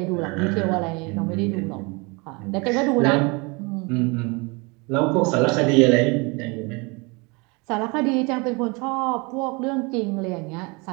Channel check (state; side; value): quieter; left; 28.6 dB